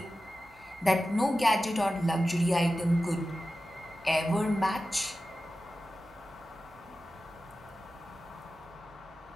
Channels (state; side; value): normal; both; correlation 0.93